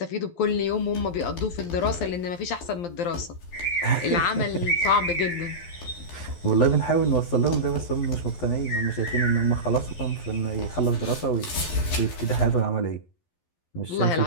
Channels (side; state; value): right; late; 12 ms